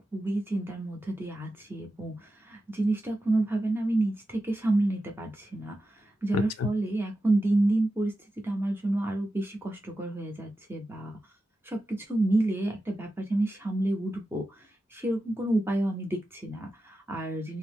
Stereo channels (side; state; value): both; normal; correlation 0.91